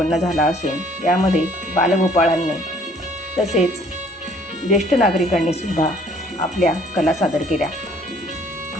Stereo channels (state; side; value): normal; both; correlation 0.59